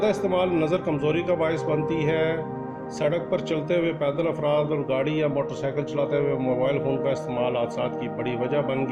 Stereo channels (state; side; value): identical; both; correlation 1.00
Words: استعمال نظر کمزوری کا باعث بنتی ہے. سڑک پر چلتے ہوئے پیدل افراد اور گاڑی یا موٹر سائیکل چلاتے ہوئے موبائل فون کا استعمال حادثات کی بڑی وجہ بن